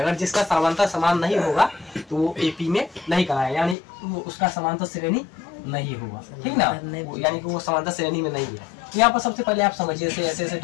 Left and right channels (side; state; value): right; drops out; at 3.8 s